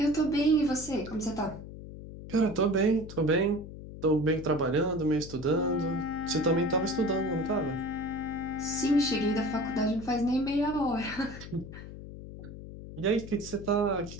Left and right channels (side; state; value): left; noise; hum, 13 dB below the sound